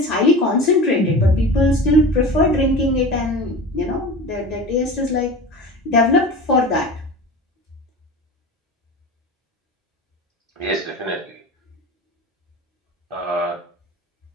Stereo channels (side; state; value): both; normal; correlation 0.33